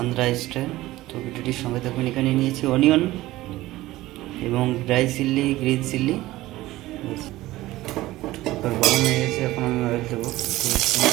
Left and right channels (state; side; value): quieter; left; 17.1 dB